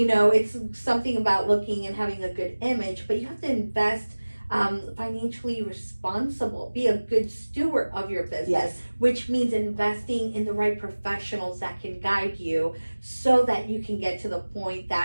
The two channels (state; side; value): inverted; both; correlation -1.00